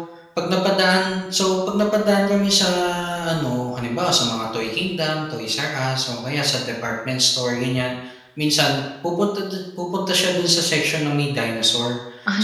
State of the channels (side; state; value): both; identical; correlation 1.00